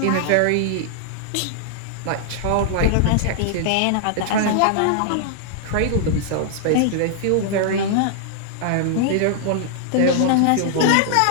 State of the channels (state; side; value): different; both; correlation -0.01